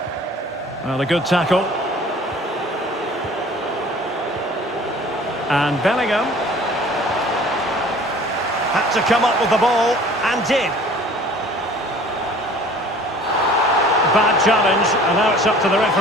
Well, a good tackle. And Bellingham had to come up with the ball and did. Bad challenge, and now it's up to the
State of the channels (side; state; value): both; normal; correlation 0.49